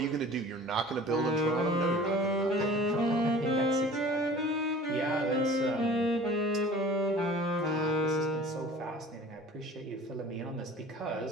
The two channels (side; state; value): both; normal; correlation 0.44